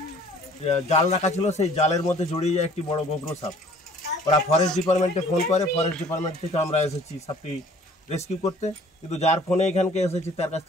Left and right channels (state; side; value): normal; both; correlation 0.53